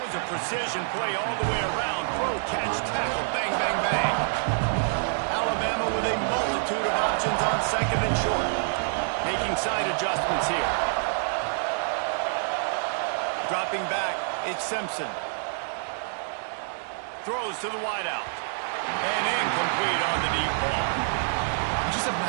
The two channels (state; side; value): silent; left; digital silence